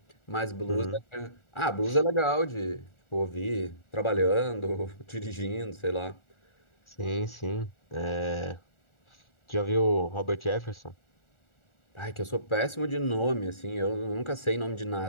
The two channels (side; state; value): right; late; 1.4 ms